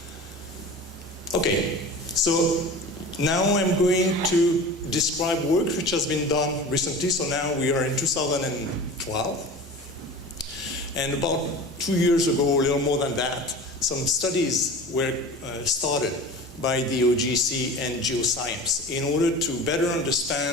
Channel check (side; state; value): both; normal; correlation 0.35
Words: Okay, so now I'm going to describe work which has been done recently. So now we are in 2012. And about 2 years ago, a little more than that, some studies were started by the OGC and geoscience in order to better